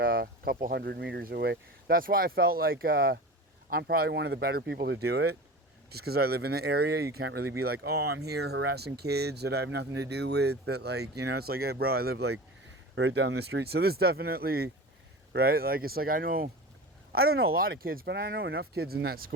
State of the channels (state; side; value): normal; both; correlation 0.32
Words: couple 100 meters away. That's why I felt like I'm probably one of the better people to do it. Just because I live in the area, you can't really be like, oh, I'm here harassing kids that I have nothing to do with. That, like, you know, it's like, hey, bro, I live like right down the street. So this definitely, right? Like, it's like I don't know a lot of kids, but I know enough kids in that